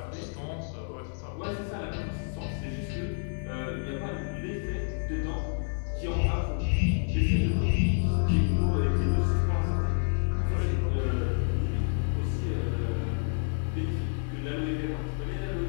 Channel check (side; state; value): right; silent; 58 dB below the other